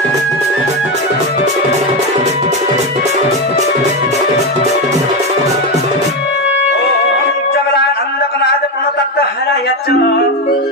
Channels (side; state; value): both; normal; correlation 0.12